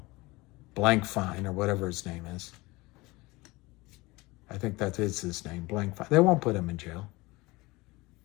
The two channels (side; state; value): right; quieter; 22.2 dB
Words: Blankfein or whatever his name is. I think that is his name, Blankfein. They won't put him in jail.